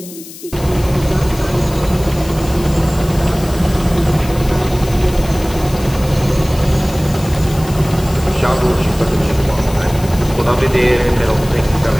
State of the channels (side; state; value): left; noise; hiss, 16 dB below the sound